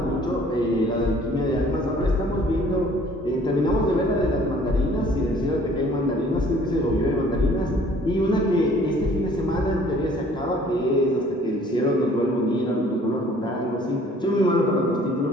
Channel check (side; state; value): both; normal; correlation 0.55